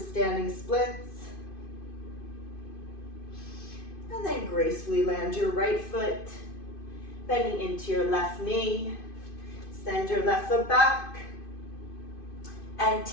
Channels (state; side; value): late; right; 2.5 ms